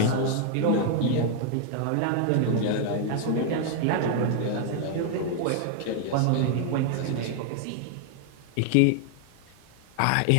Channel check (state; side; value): different; both; correlation 0.00